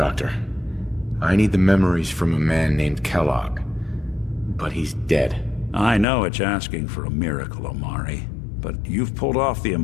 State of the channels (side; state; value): right; drops out; at 6.1 s